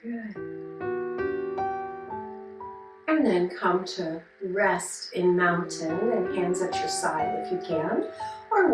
Good. And then come to rest in mountain and hands at your side if you can, or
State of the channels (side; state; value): both; identical; correlation 1.00